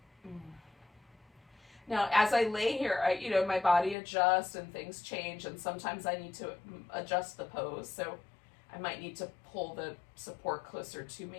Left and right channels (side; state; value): right; drops out; at 4.0 s